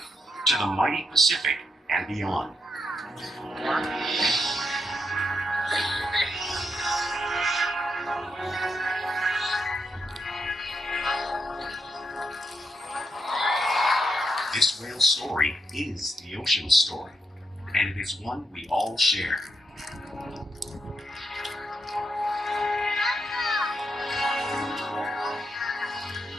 to the mighty Pacific and beyond. This whale's story is the ocean's story, and it is one we all share.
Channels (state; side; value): normal; both; correlation 0.82